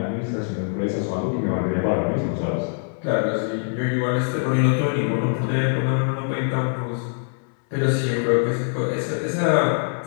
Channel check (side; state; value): right; silent; 63 dB below the other